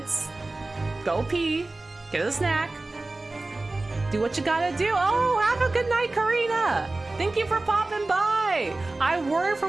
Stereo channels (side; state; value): left; quieter; 3.1 dB